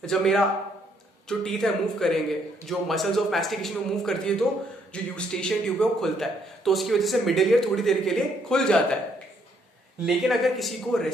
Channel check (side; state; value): both; normal; correlation 0.70